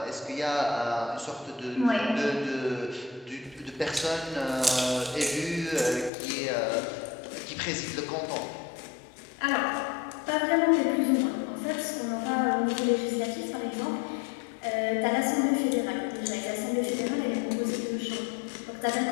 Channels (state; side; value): drops out; right; at 6.1 s